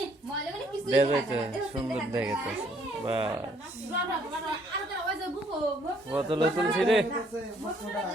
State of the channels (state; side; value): normal; both; correlation 0.65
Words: দেখে সুন্দর দেখে বা বোতল তুলছি রে